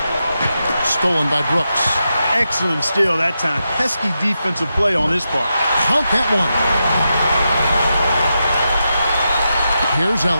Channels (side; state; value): both; inverted; correlation -0.87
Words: stolen by Brooks. Excellent steal that time. Pesky defensive play on his part. Count that one. Here's